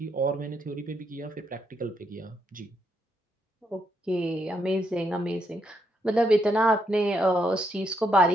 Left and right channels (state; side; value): normal; both; correlation 0.77